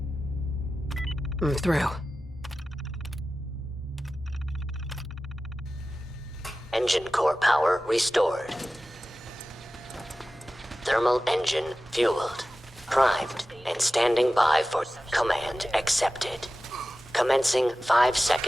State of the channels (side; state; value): both; normal; correlation 0.95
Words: I'm through. Engine core power restored. Thermal engine fueled, primed, and standing by for command accepted. Commencing